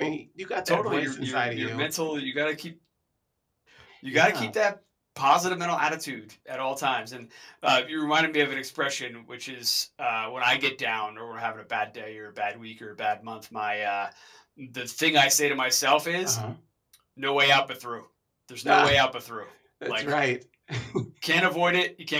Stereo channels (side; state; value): both; identical; correlation 1.00